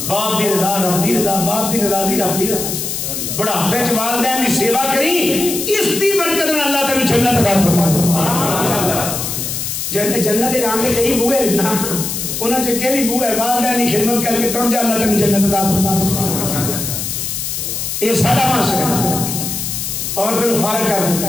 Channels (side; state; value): left; noise; hiss, 4 dB below the sound